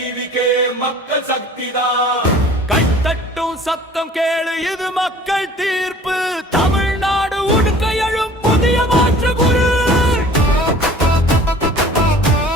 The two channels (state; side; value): normal; both; correlation 0.48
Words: மக்கள் சக்திதான். கைத்தட்டும் சத்தம் கேளு, இது மக்கள் தீர்ப்பு. தமிழ்நாடு உடுக்க எழும் புதிய மாற்று குரு.